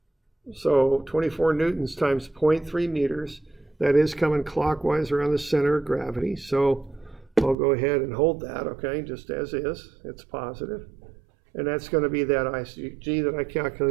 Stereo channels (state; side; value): drops out; left; at 7.6 s